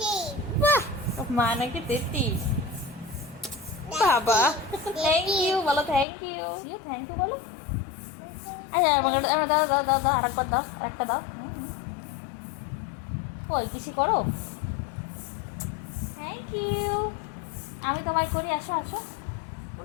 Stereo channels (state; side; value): drops out; right; at 6.1 s